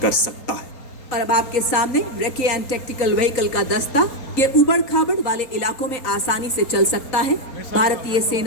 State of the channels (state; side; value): late; right; 3.9 ms